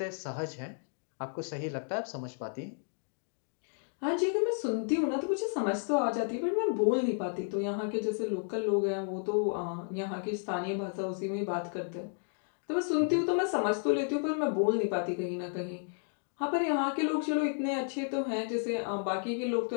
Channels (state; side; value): silent; right; 56 dB below the other